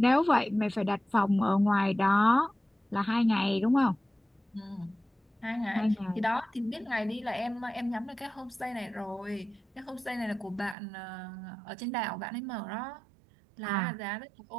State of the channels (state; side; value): drops out; left; at 10.8 s